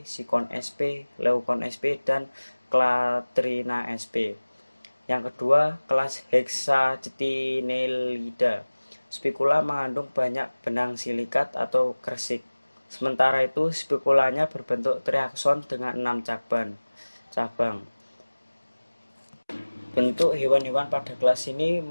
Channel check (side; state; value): both; inverted; correlation -1.00